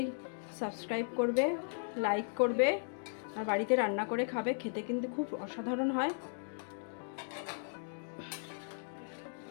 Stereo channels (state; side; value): silent; right; digital silence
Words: সাবস্ক্রাইব করবে, লাইক করবে, আর বাড়িতে রান্না করে খাবে। খেতে কিন্তু খুব অসাধারণ হয়।